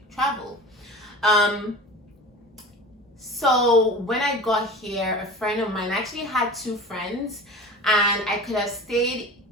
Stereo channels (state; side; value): normal; both; correlation 0.35